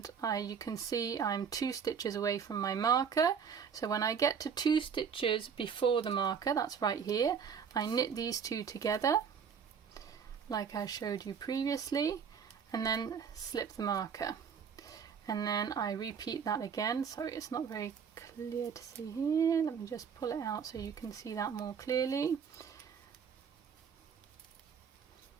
you can see I'm 2 stitches away from my marker. So when I get to 2 stitches before the marker, that's right here, I knit these 2 together like I showed you previously, and then slip the marker, and then I repeat that again. Sorry, it's not very clear to see here. Let me just pull it out so you can see that more clearly.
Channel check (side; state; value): left; quieter; 6.8 dB